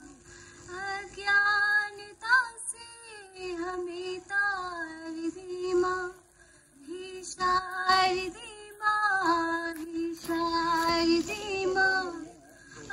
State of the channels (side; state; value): both; identical; correlation 1.00